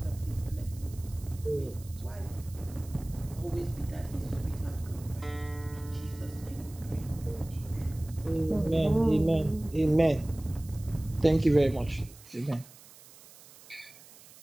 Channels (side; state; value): right; noise; hiss, 21 dB below the sound